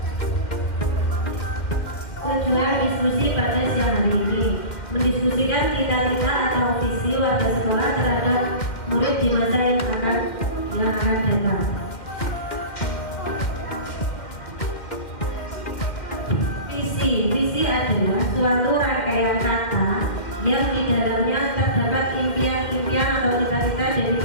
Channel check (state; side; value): late; right; 2.1 ms